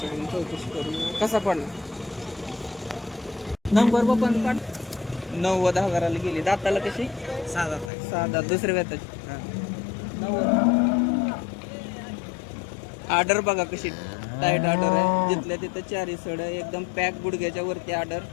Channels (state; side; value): drops out; right; at 7.9 s